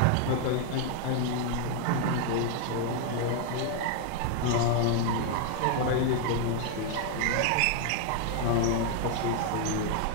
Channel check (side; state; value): both; different; correlation 0.00